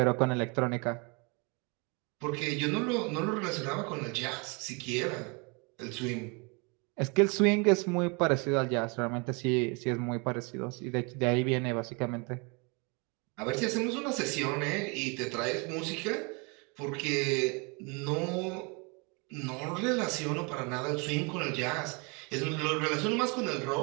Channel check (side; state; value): left; quieter; 31.5 dB